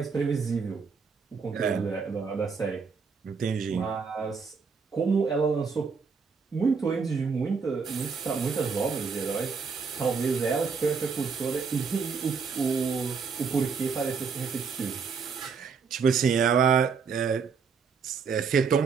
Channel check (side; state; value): left; quieter; 5.5 dB